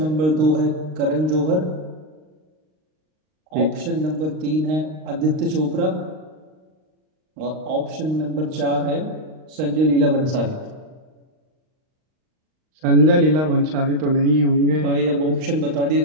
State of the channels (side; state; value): left; late; 39 ms